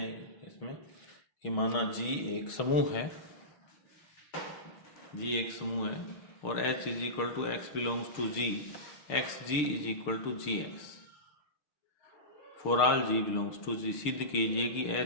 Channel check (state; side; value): late; right; 6.6 ms